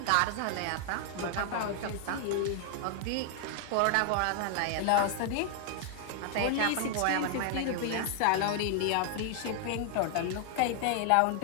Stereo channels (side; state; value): both; different; correlation 0.00